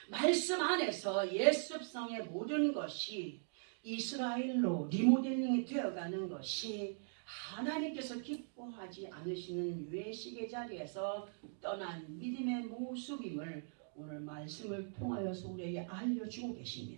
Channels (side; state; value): left; silent; digital silence